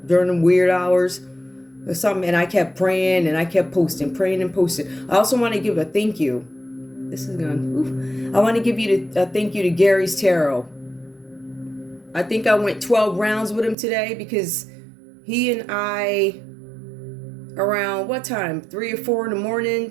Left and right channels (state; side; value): drops out; left; at 13.8 s